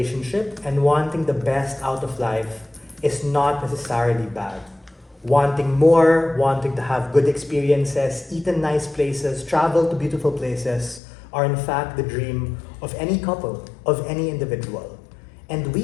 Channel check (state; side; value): drops out; right; at 11.0 s